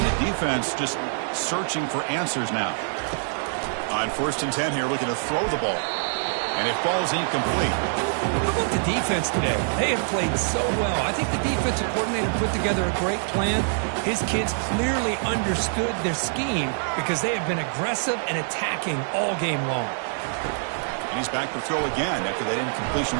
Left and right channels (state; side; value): silent; left; digital silence